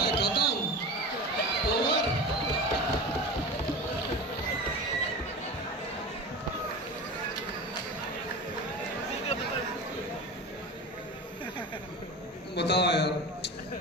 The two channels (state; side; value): normal; both; correlation 0.30